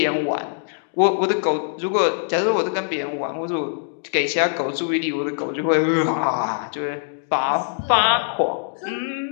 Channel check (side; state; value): right; silent; digital silence